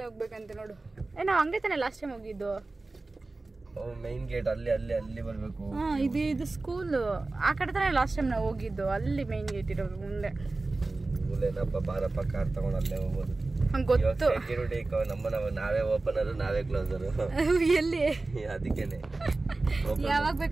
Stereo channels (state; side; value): quieter; left; 3.3 dB